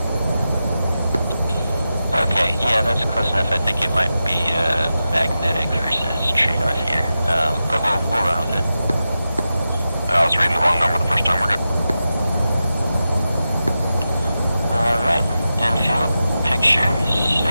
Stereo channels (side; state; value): both; inverted; correlation -0.91